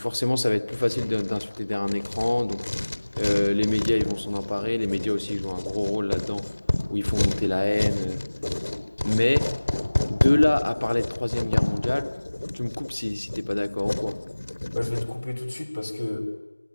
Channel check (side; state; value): both; inverted; correlation -1.00